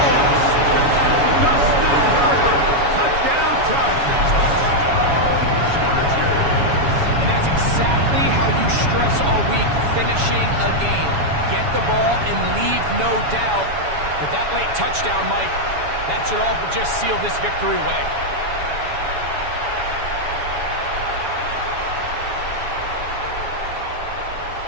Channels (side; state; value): left; late; 7.1 ms